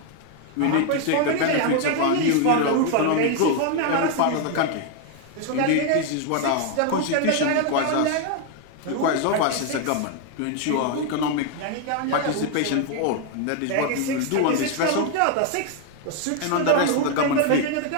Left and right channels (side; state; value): both; different; correlation 0.01